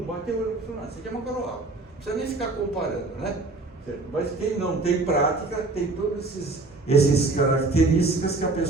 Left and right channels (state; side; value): quieter; left; 3.3 dB